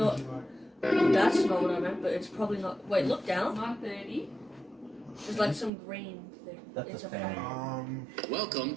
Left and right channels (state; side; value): drops out; left; at 5.7 s